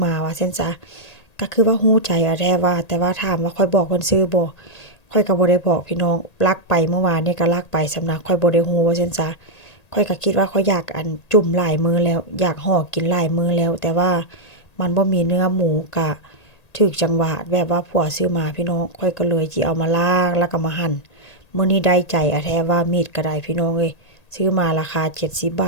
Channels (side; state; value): right; late; 1.8 ms